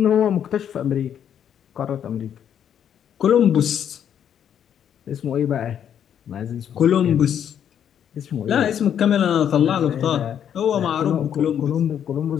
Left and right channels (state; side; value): quieter; right; 9.1 dB